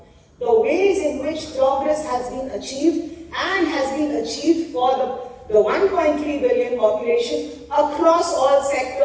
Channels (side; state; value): both; identical; correlation 1.00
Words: the ways in which progress has been achieved and has been achieved for the 1.3 billion population across all